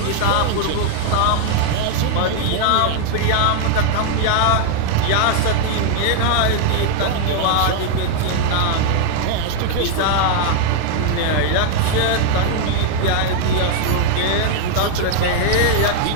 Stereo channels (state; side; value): different; both; correlation 0.00